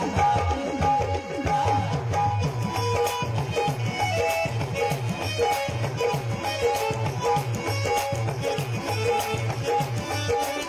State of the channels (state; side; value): identical; both; correlation 1.00